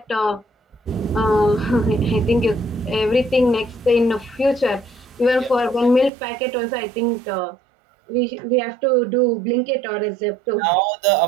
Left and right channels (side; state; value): left; drops out; at 6.1 s